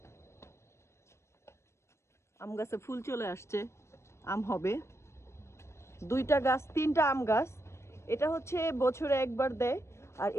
আম গাছে ফুল চলে আসছে, আম হবে। 2টা গাছ, 3টা আম গাছ। এটা হচ্ছে বছরে একবার দেয়, আর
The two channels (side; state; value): right; late; 0.13 ms